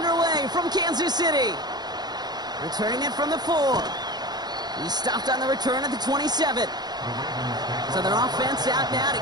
from Kansas City. Returning it from the 4. He stopped on the return at the 27. So their offense out now to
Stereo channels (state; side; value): late; left; 0.20 ms